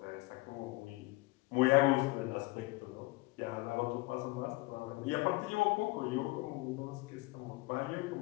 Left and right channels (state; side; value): quieter; right; 22.1 dB